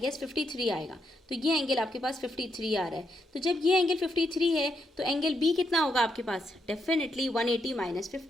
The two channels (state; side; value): normal; both; correlation 0.80